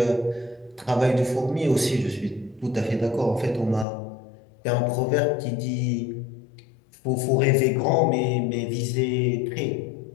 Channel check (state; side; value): drops out; right; at 3.9 s